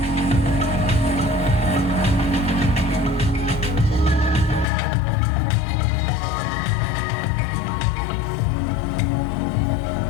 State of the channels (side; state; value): right; drops out; at 4.7 s